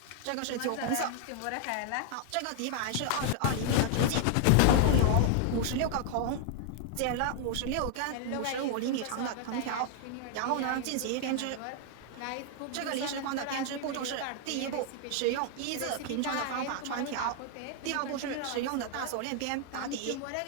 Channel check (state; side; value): different; both; correlation 0.00